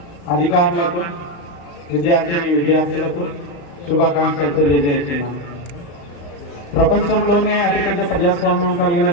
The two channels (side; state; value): right; late; 35 ms